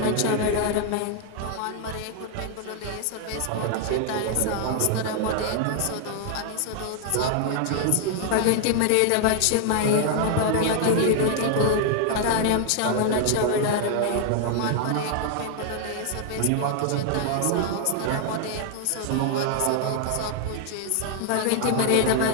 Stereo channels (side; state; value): both; different; correlation 0.00